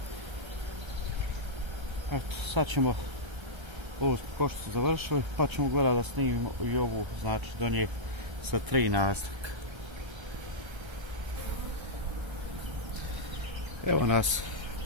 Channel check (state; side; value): late; left; 1.3 ms